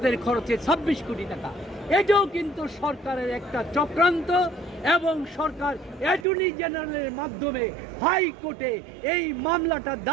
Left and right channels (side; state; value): left; drops out; at 6.2 s